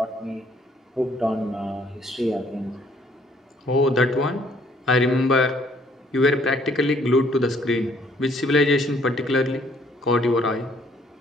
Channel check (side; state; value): both; normal; correlation 0.63